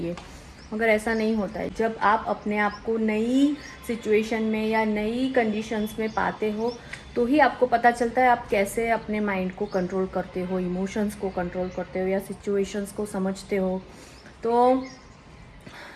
मगर ऐसा नहीं होता है। जब आप अपने आप को नई सिचुएशन में या नई कंडीशंस में पाते हो तो ही आपको पता चलता है आप कैसे अपने माइंड को कंट्रोल करते हो, इमोशंस को कंट्रोल करते हो या सिचुएशंस को समझते हो। तो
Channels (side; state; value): both; identical; correlation 1.00